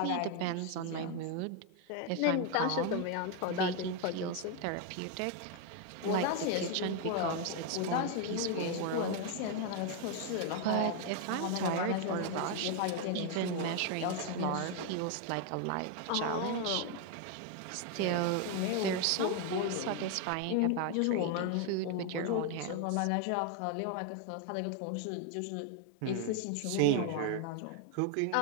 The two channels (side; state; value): both; different; correlation 0.01